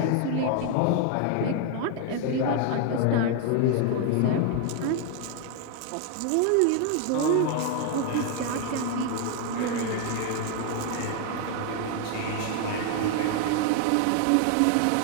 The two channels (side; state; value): both; different; correlation 0.00